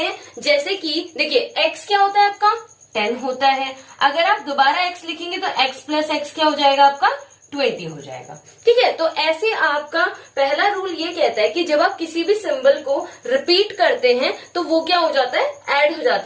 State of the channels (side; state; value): both; identical; correlation 1.00